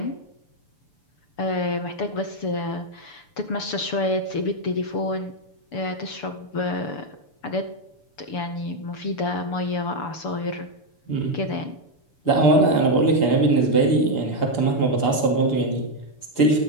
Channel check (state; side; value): late; right; 6.9 ms